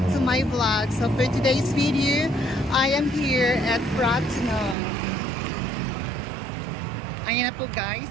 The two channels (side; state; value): left; drops out; at 4.8 s